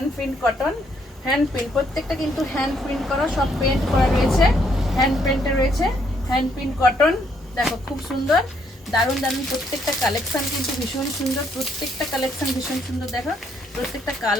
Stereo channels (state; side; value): normal; both; correlation 0.71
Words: print cotton, hand print প্রত্যেকটা কিন্তু হ্যান্ড প্রিন্ট করা, সব পেন্ট করা রয়েছে, হ্যান্ড প্রিন্টে রয়েছে, হ্যান্ড প্রিন্ট কটন। দেখো খুব সুন্দর, দারুণ দারুণ প্রত্যেকটা কালেকশন কিন্তু ভীষণ সুন্দর, প্রত্যেকটা কালেকশন ভীষণ সুন্দর। দেখো প্রত্যেকটা